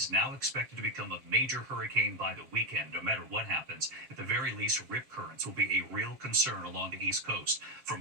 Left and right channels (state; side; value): late; left; 7.5 ms